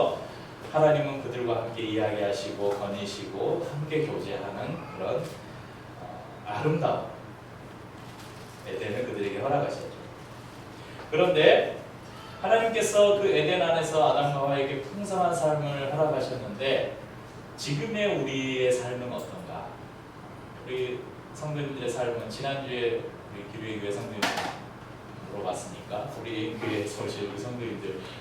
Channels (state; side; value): identical; both; correlation 1.00